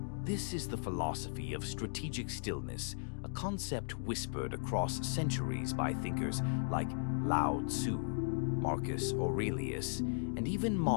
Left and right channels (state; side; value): silent; right; digital silence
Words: This is the philosophy of strategic stillness, a concept whispered across centuries by thinkers like Lao Tzu, Marcus Aurelius, and even